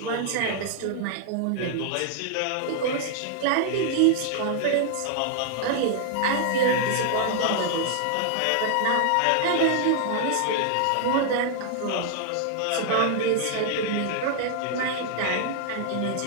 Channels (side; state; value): both; different; correlation 0.00